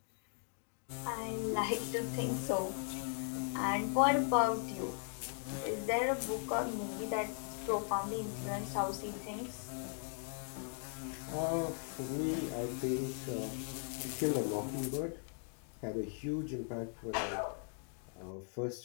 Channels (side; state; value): right; silent; 52 dB below the other